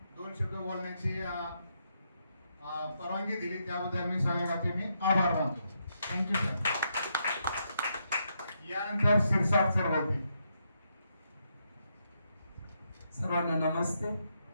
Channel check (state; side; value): inverted; both; correlation -0.79